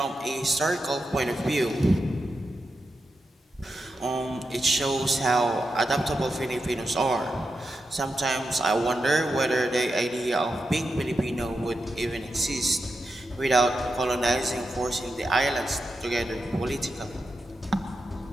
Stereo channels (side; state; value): both; normal; correlation 0.88